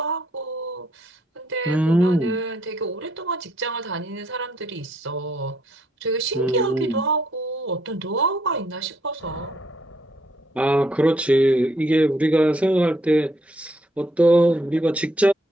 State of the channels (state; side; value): normal; both; correlation 0.71